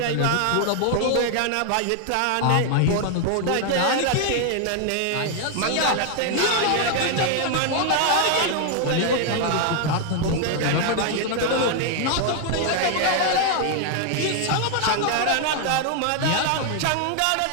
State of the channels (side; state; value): both; different; correlation 0.00